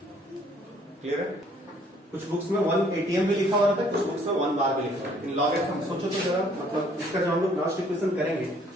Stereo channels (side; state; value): both; normal; correlation 0.61